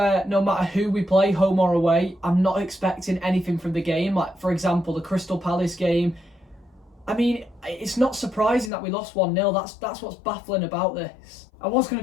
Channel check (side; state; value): right; drops out; at 8.7 s